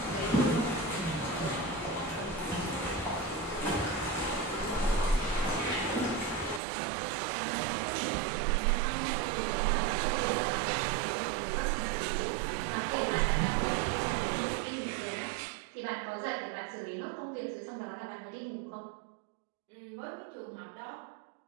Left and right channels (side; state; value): left; drops out; at 6.6 s